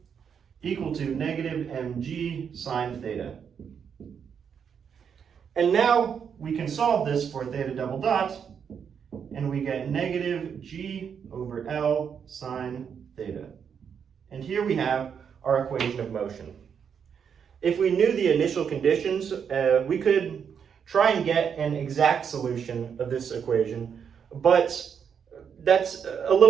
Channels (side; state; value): left; quieter; 7.3 dB